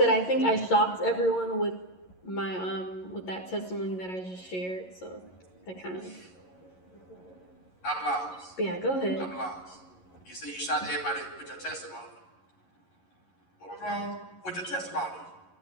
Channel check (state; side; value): late; right; 11 ms